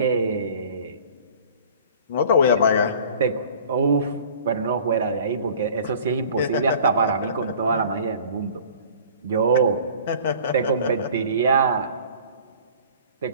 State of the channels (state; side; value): inverted; both; correlation -0.47